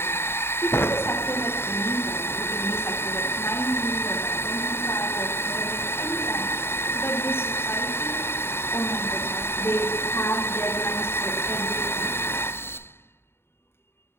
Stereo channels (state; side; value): late; right; 0.11 ms